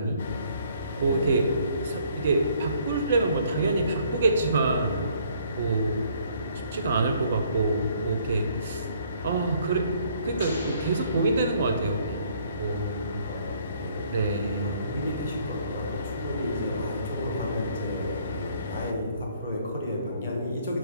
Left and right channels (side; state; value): both; inverted; correlation -0.63